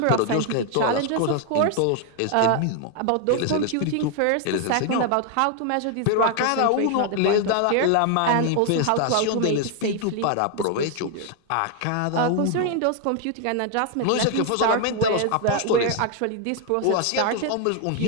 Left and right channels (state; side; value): different; both; correlation 0.01